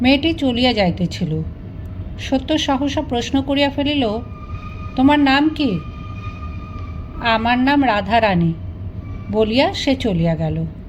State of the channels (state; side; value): identical; both; correlation 1.00